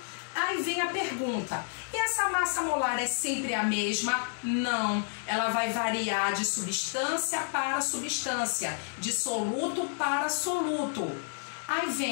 Aí vem a pergunta, e essa massa molar é sempre a mesma? Não, ela vai variar de substância para substância, de soluto para soluto. Aí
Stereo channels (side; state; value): right; silent; 58 dB below the other